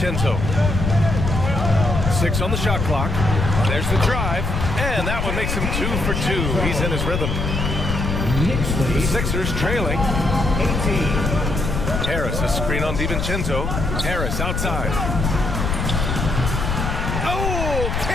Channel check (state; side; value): noise; left; rumble, 2 dB below the sound